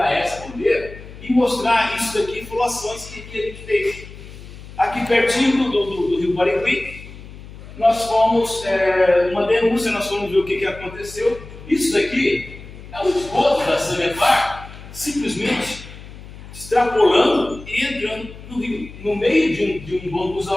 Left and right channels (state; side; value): noise; left; hum, 16 dB below the sound